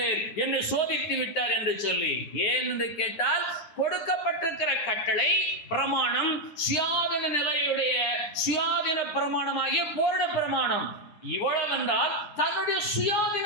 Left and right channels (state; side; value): late; right; 9.6 ms